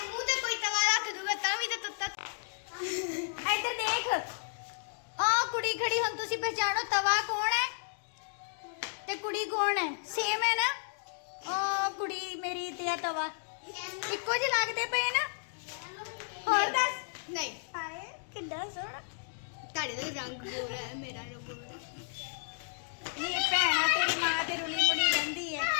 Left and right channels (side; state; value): right; silent; digital silence